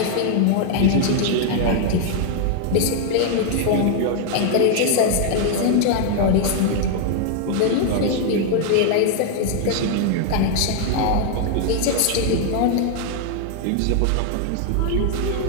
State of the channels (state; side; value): different; both; correlation 0.00